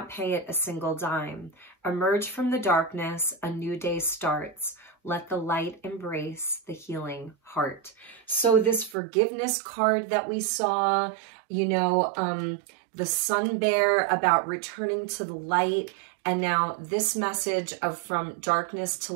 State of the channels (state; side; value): drops out; left; at 9.0 s